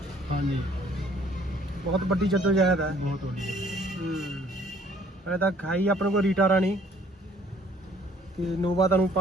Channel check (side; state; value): both; normal; correlation 0.59